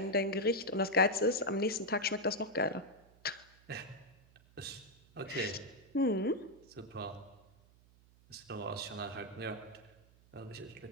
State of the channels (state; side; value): noise; right; hum, 27 dB below the sound